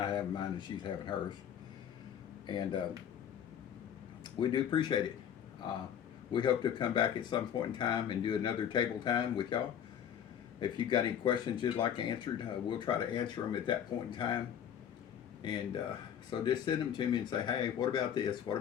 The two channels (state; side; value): quieter; right; 9.2 dB